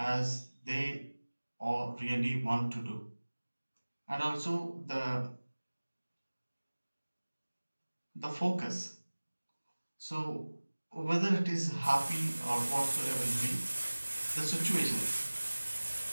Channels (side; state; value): both; inverted; correlation -1.00